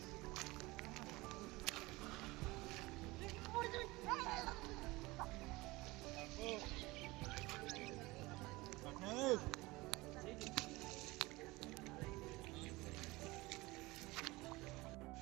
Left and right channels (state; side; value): quieter; left; 21.6 dB